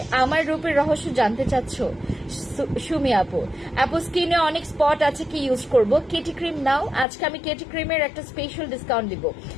আমার রূপের রহস্য জানতে চাচ্ছ সুমি আপু? স্কিনে অনেক স্পট আছে, কি ইউজ করব? কেটি ক্রিম নাও, আজকে আমি কেটি ক্রিমের একটা স্পেশাল ডিসকাউন্ট দিব।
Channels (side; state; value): right; drops out; at 7.1 s